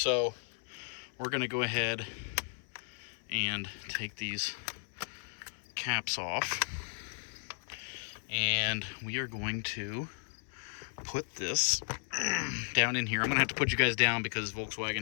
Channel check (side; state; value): right; silent; 55 dB below the other